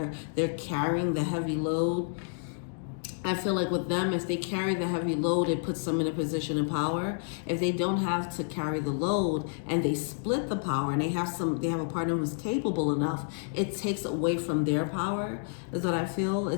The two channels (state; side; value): silent; right; digital silence